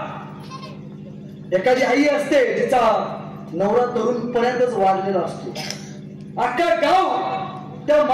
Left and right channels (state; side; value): identical; both; correlation 1.00